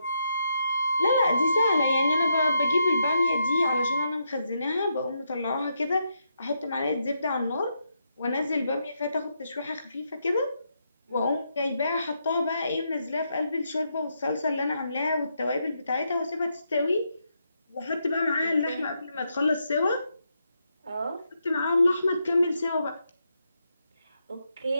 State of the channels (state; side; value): inverted; both; correlation -0.80